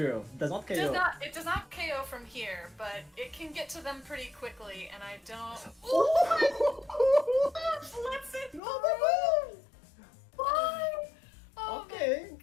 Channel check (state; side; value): drops out; right; at 8.6 s